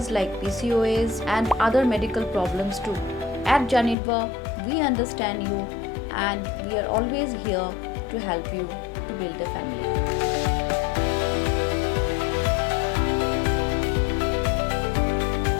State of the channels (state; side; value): drops out; right; at 4.0 s